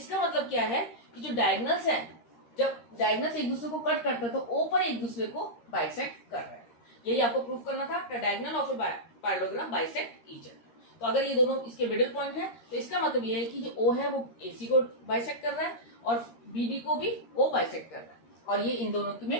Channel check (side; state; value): right; late; 13 ms